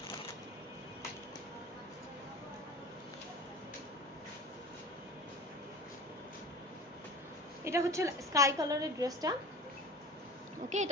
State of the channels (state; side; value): normal; both; correlation 0.37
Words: এটা হচ্ছে স্কাই কালারের ড্রেসটা। ওকে,